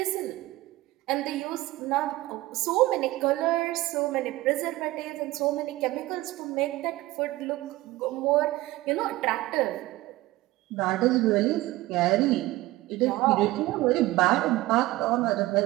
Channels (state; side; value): quieter; left; 18.1 dB